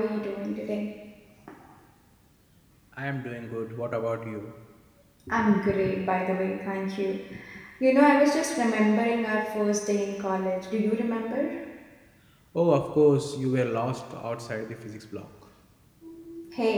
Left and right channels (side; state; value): both; identical; correlation 1.00